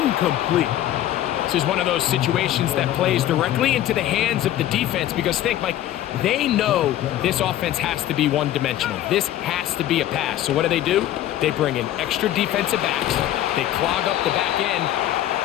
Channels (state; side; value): quieter; right; 12.9 dB